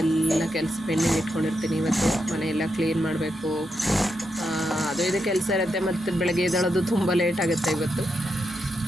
ಕೆಲಸ ಪೆಂಡಿಂಗ್ ಇಟ್ಕೊಂಡಿರ್ತೀನಿ. ಇವತ್ತು ಮನೆಯೆಲ್ಲ ಕ್ಲೀನ್ ಮಾಡಬೇಕು, ಅದು ಇದು ಕೆಲಸ ಇರುತ್ತೆ. ಮತ್ತು ಬೆಳಗ್ಗೆ ಎದ್ದೇಳೋದು ತುಂಬ ಲೇಟ್ ಆಗುತ್ತೆ ಇವತ್ತು.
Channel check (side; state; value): both; normal; correlation 0.84